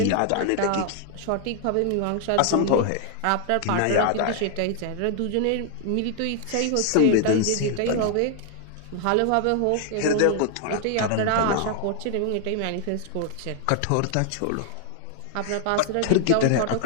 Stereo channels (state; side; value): different; both; correlation 0.00